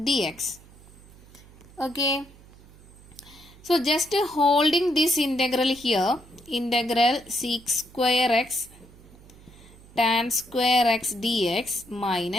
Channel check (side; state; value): right; noise; hum, 23 dB below the sound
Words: Okay. So just holding this integral here, integral sec square x tan square x dx